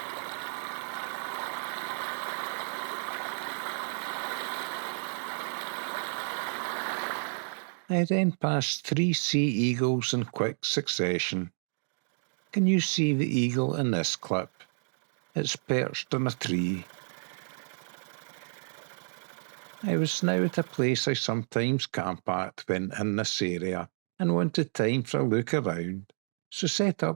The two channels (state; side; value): silent; left; digital silence